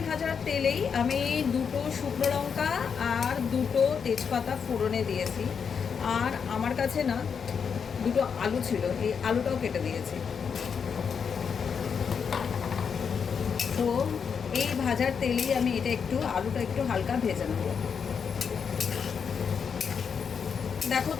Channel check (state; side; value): quieter; right; 6.5 dB